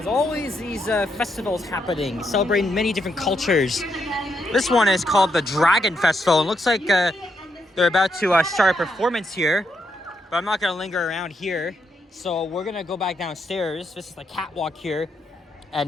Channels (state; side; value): normal; both; correlation 0.79